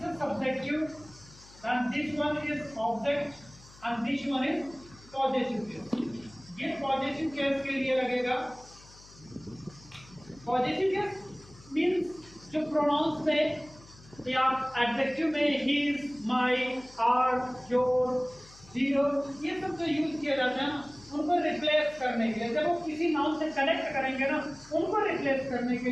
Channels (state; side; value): noise; left; hum, 23 dB below the sound